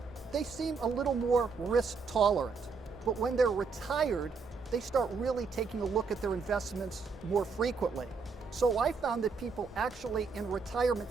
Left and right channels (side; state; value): left; quieter; 4.9 dB